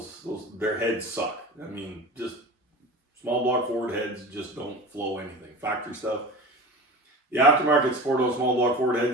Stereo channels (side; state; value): both; normal; correlation 0.33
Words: their heads suck. I mean, just small block Ford heads just don't flow anything. Factory stuff. The aftermarket support on small block Ford